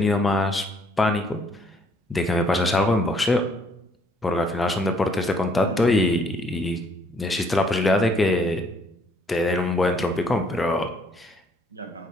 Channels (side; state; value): both; normal; correlation 0.65